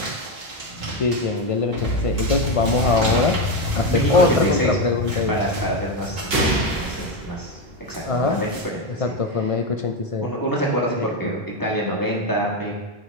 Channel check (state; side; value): normal; both; correlation 0.11